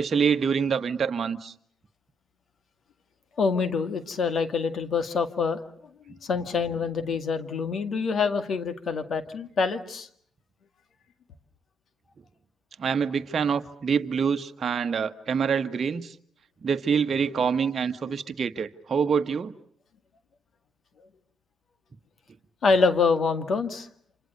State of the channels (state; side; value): normal; both; correlation 0.72